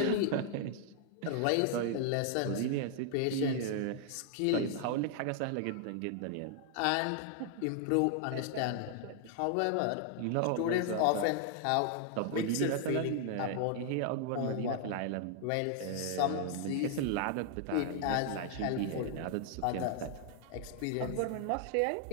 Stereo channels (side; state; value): both; different; correlation 0.00